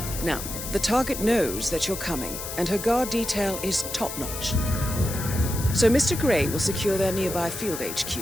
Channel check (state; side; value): noise; left; hiss, 8 dB below the sound